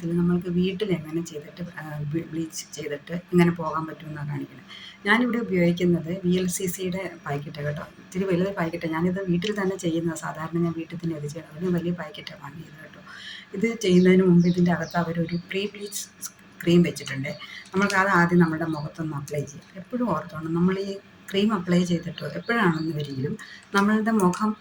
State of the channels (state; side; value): identical; both; correlation 1.00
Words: നമ്മൾക്ക് വീട്ടിലെങ്ങനെ ചെയ്തിട്ട് ബ്ലീച്ച് ചെയ്തിട്ട് എങ്ങനെ പോകാൻ പറ്റുമെന്നാണ് കാണിക്കുന്നത്. ഞാനിവിടെ ഉപയോഗിക്കുന്നത് VLCCയുടെ പാക്കറ്റാണ് കേട്ടോ. ഇത്തിരി വലുത് പാക്കറ്റാണ്. ഞാനിത് വീട്ടിൽ തന്നെ ചെയ്യുന്നത്. സാധാരണ ഞാൻ വീട്ടിൽ തന്നെ ഇത് ചെയ്യണം. അതിന് വലിയ പാക്കറ്റാണ് വാങ്ങിയത് കേട്ടോ. ഇത് ചെയ്യുന്നതിന് മുമ്പ് ഇതിൻ്റെ അകത്ത് അവരൊരു പ്രീ ബ്ലീച്ച് ക്രീം വെച്ചിട്ടുണ്ട്. നമ്മൾക്ക് അത് ആദ്യം നമ്മുടെ മുഖത്തൊന്ന് അപ്ലൈ ചെയ്യാം. എപ്പോഴും ഓർത്തോണം, നമ്മൾ ഈ ക്രീം അപ്ലൈ ചെയ്തിട്ടോ എപ്പോഴാണെന്ന് വരികിലും നമ്മളുടെ മുഖം